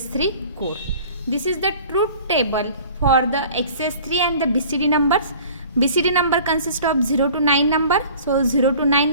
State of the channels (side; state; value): both; inverted; correlation -0.47